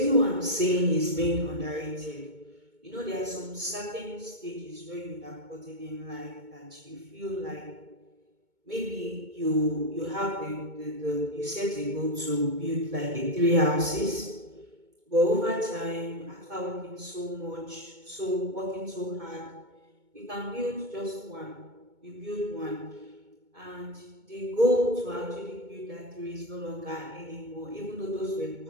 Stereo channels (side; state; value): left; late; 2.2 ms